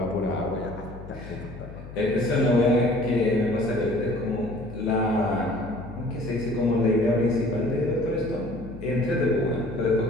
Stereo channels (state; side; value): noise; left; hum, 14 dB below the sound